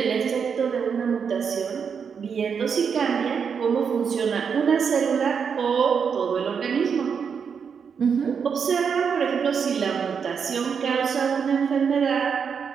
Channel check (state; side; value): quieter; left; 6.5 dB